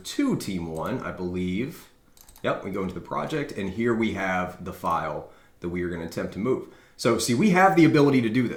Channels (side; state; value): both; identical; correlation 1.00